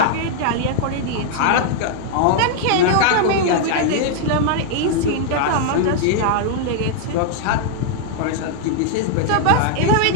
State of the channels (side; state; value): both; different; correlation 0.00